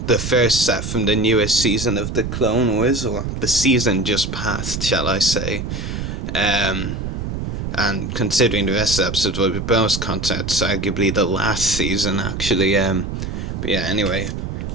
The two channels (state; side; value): noise; right; rumble, 5 dB below the sound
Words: first set from the newest season of the Clone Wars, or the season just passed, shall I say. And considering the rest of the episodes will be bonus content, it's arguably the last season actually. But yeah, anyway,